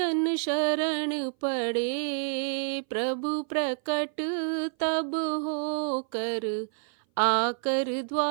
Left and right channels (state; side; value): silent; left; 57 dB below the other